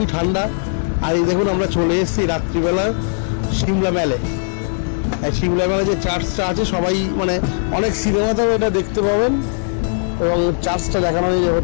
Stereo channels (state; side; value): silent; right; digital silence